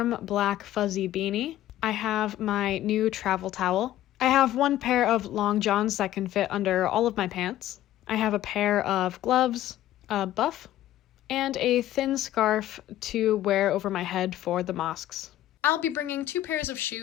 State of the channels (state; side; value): quieter; right; 13.7 dB